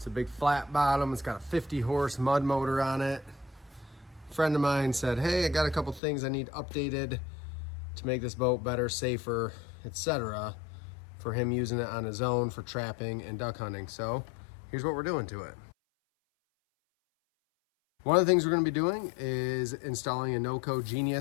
a big flat bottom. It's got a 50 horse mud motor on it. A friend of mine said, hey, I got a couple things I need updated to make this boat better, safer, etc. for him using it on his own for trapping and duck hunting. So here's what we're doing to it. One of the things we're going to be doing is installing a NoCo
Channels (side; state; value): right; drops out; at 6.0 s